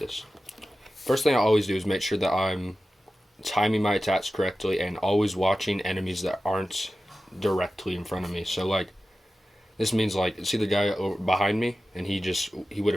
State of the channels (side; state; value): both; normal; correlation 0.94